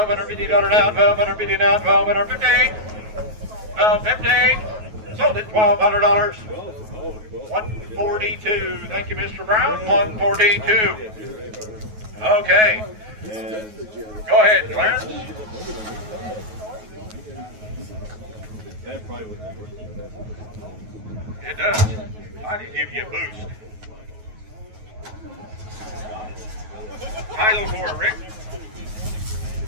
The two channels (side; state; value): left; late; 9.3 ms